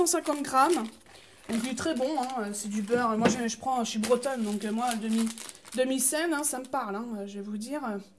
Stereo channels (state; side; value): identical; both; correlation 1.00